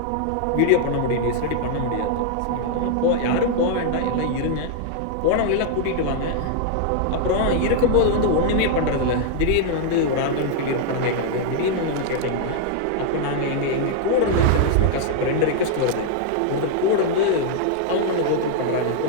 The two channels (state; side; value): different; both; correlation 0.00